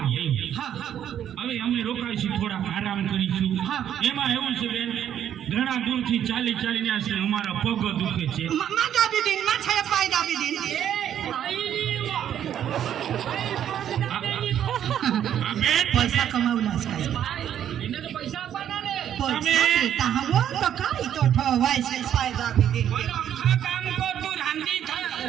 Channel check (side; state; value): left; quieter; 10.1 dB